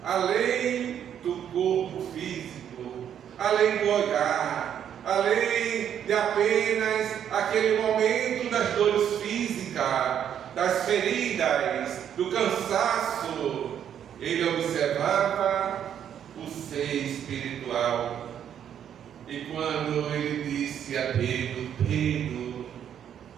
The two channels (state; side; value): quieter; left; 9.3 dB